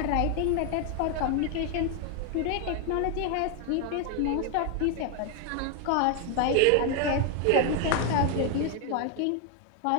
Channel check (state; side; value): different; both; correlation 0.01